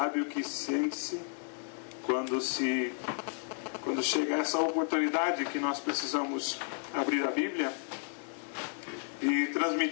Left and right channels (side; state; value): right; silent; 56 dB below the other